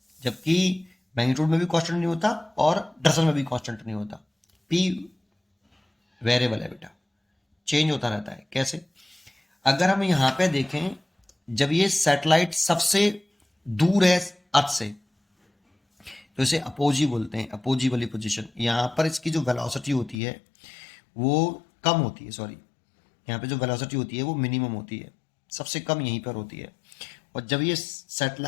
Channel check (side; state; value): right; drops out; at 20.2 s